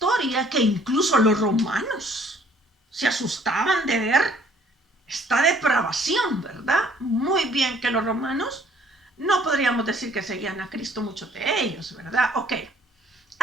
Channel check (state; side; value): normal; both; correlation 0.59